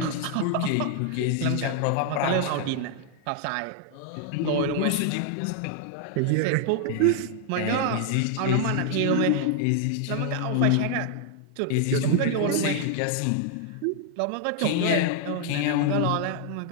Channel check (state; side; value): different; both; correlation 0.00